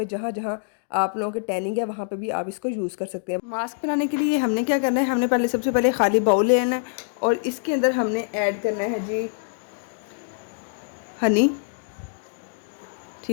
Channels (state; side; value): silent; right; digital silence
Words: जहाँ जहाँ आप लोगों के टैनिंग है वहाँ पे भी आप इसको यूज़ कर सकते हैं। मास्क बनाने के लिए हमने क्या करना है, हमने पहले सबसे पहले खाली बाउल लेना है और इसके अंदर हमने ऐड करना है जी हनी।